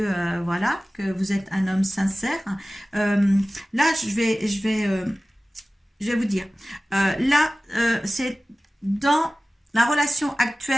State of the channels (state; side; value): normal; both; correlation 0.97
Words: voilà, que vous êtes un homme sincère. Là, je vais vous dire, là, c'est dans la relation